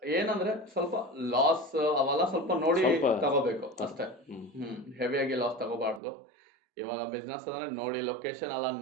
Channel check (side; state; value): left; drops out; at 6.0 s